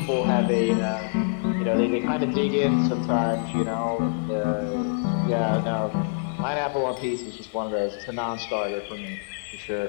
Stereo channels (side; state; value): right; silent; 58 dB below the other